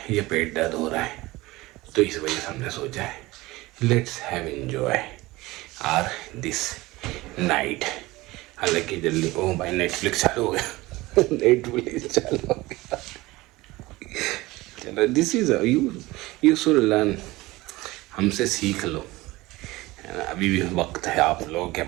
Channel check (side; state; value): left; quieter; 20.0 dB